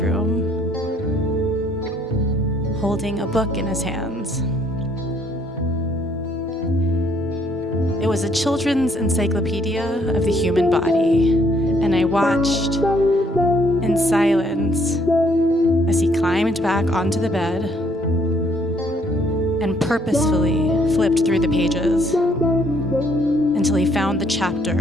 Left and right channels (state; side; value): normal; both; correlation 0.66